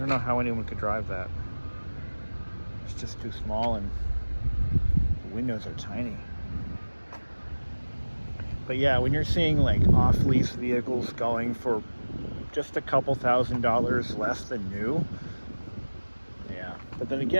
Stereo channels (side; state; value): both; inverted; correlation -1.00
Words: know how anyone could drive that. It's just too small, and the windows are tiny. But yeah, when you're seeing like off-lease vehicles going for just a couple $1,000s less than new, yeah. But then